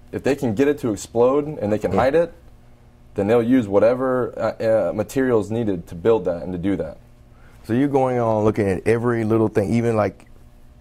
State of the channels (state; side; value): identical; both; correlation 1.00